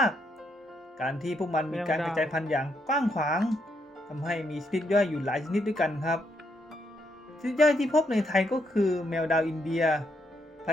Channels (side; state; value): both; normal; correlation 0.77